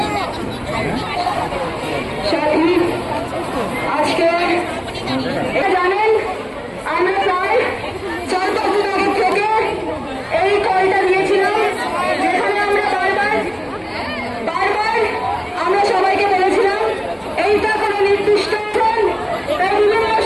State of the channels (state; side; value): identical; both; correlation 1.00